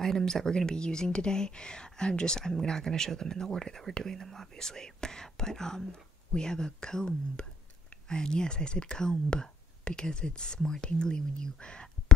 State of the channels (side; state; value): both; normal; correlation 0.65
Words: items that we're gonna be using today. I'm not gonna show them in the order that we're doing them, obviously. But we have a comb, and yes, I said comb because it's more tingly when you